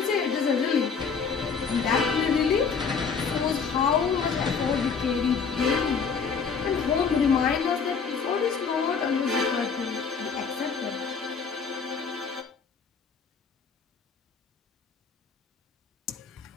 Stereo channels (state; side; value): quieter; right; 5.7 dB